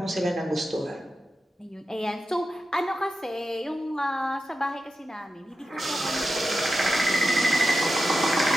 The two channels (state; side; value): normal; both; correlation 0.90